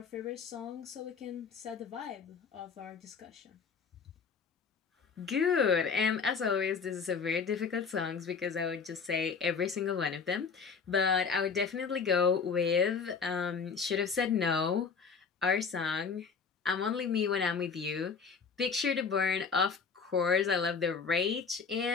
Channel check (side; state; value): right; quieter; 5.6 dB